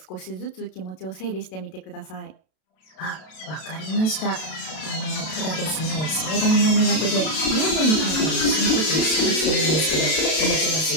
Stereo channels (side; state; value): right; late; 32 ms